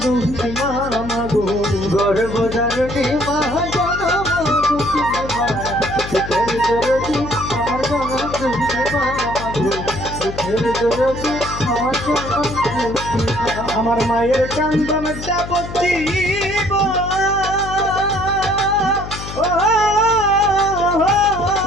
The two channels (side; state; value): left; noise; hum, 10 dB below the sound